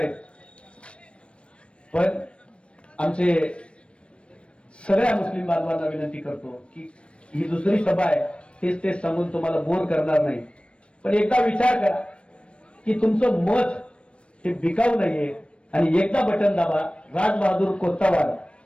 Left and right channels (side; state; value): right; late; 0.059 ms